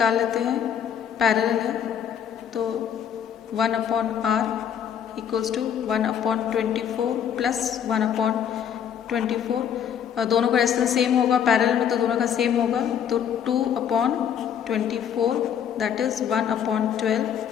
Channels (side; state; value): right; quieter; 8.7 dB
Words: लेते हैं, पैरेलल है तो 1 upon R equals to 1 upon 24 plus 1 upon 24। दोनों का रेजिस्टेंस सेम होगा, पैरेलल में तो दोनों का सेम होगा, तो 2 अपॉन 24 दैट इज 1 अपॉन 12।